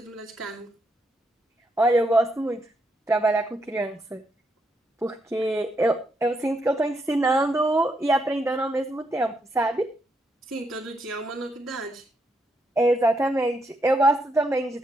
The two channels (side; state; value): both; normal; correlation 0.79